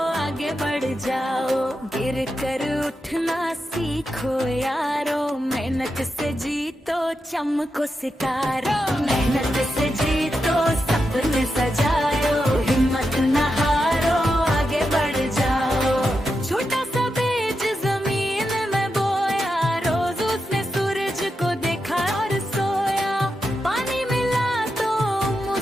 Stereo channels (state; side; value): normal; both; correlation 0.87